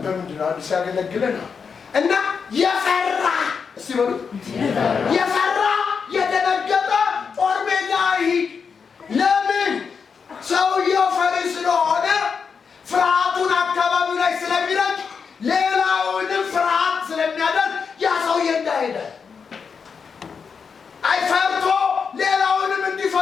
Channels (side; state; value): right; quieter; 5.9 dB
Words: ነው አዲስ ያገለግለን እና የፈራ እስቲ በሉ የፈራ የደነገጠ ጦር ሜዳ ይሄድ። ለምን? ሰውየው ፈሪ ስለሆነ ፍርሃቱን አካባቢው ላይ ስለሚረጭ ሌላውንም ፍርሃት ስለሚያደርግ ያ ሰውዬ እንዳይሄድ አይፈርቶ ሌላውንም